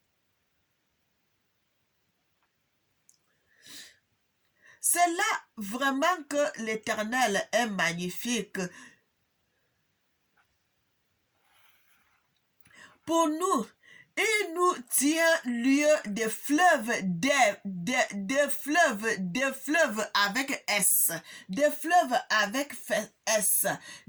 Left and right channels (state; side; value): identical; both; correlation 1.00